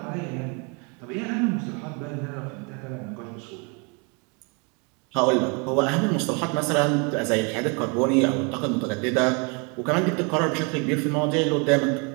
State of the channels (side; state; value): left; quieter; 33.2 dB